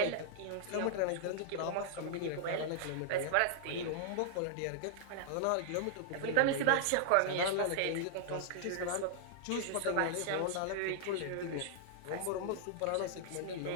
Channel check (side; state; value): both; different; correlation -0.01